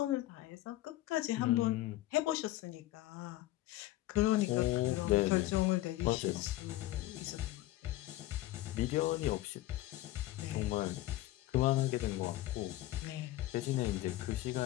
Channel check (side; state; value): right; quieter; 16.3 dB